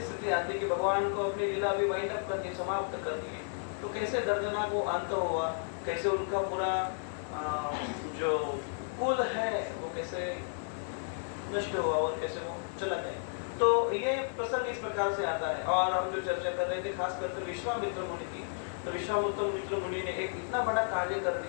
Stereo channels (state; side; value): silent; right; digital silence